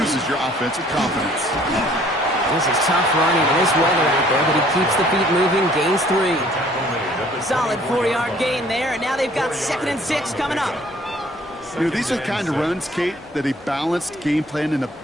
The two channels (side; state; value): both; normal; correlation 0.57